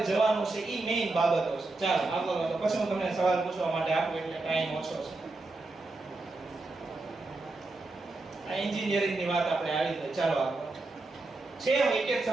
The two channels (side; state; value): left; quieter; 3.2 dB